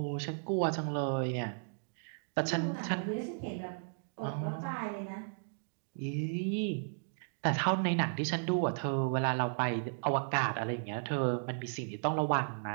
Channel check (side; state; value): left; silent; digital silence